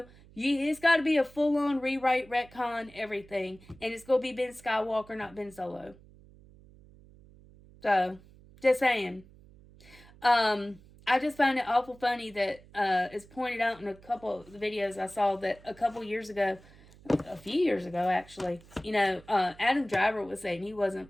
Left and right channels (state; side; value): noise; right; hum, 24 dB below the sound